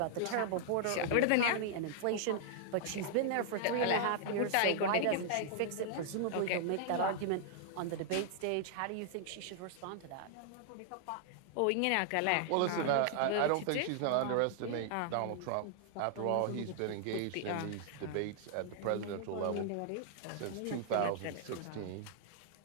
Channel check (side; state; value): both; different; correlation -0.01